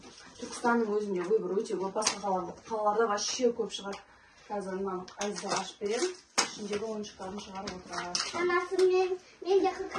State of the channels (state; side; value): identical; both; correlation 1.00